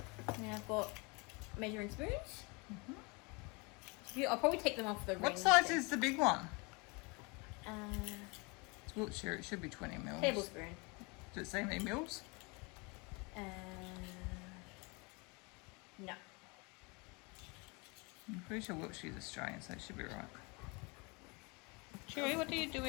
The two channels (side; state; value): right; quieter; 29.0 dB